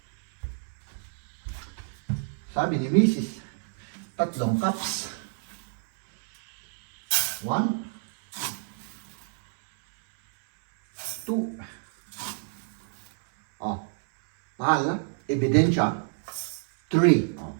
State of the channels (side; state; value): left; silent; 59 dB below the other